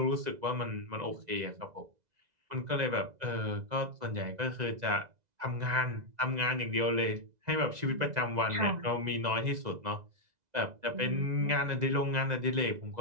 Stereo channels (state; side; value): late; left; 2.0 ms